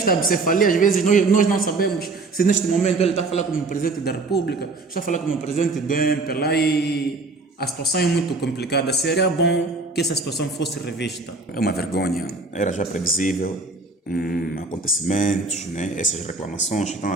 bicefalia, às vezes, nós não sabemos se neste momento ele está a falar como presidente da República, está a falar como presidente do MPLA e a situação é muito complicada. Seria bom que essa situação fosse revista. É uma vergonha, era já previsível. Acontecimentos, né? Essas reclamações que estão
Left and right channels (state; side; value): quieter; left; 3.5 dB